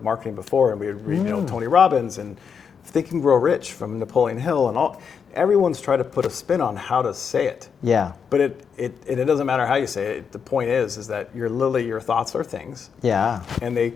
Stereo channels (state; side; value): quieter; right; 6.6 dB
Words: marketing before, and we would read, Tony Robbins and Think and Grow Rich from Napoleon Hill, and all. Everyone's tried to put a spin on how to say it. Yeah. But it doesn't matter how you say it. The point is that your thoughts are things. Yeah. And they